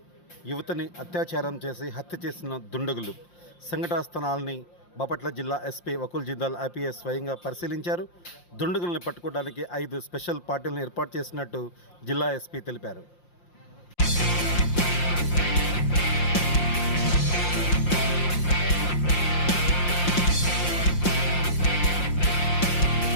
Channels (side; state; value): right; late; 5.7 ms